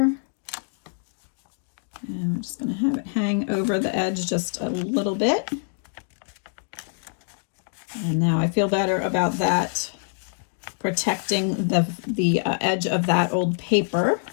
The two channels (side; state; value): right; silent; digital silence